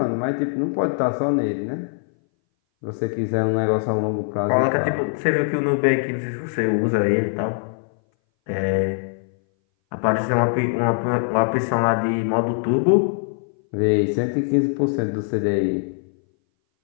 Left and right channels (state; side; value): silent; right; 60 dB below the other